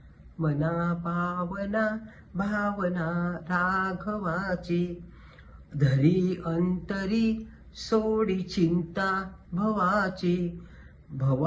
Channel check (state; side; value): identical; both; correlation 1.00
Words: मना पावना भावना राघवाची, धरी अंतरी सोडी चिंता भवाची.